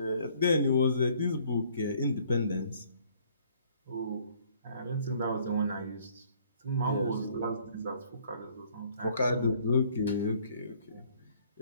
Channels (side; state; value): both; inverted; correlation -0.60